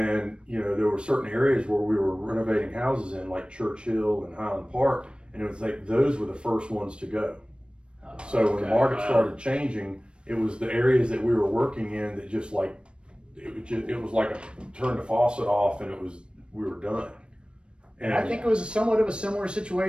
you know, there were certain areas where we were renovating houses in, like Churchill and Highland Park, and it was like those were the first ones to go. So when the market started changing, it was the areas that we were working in that just like it was like turn the faucet off, and we were done. And I think it was somewhat of a similar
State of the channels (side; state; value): left; late; 0.056 ms